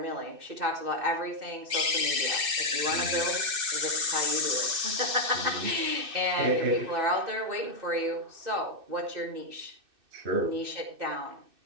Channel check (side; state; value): left; late; 2.6 ms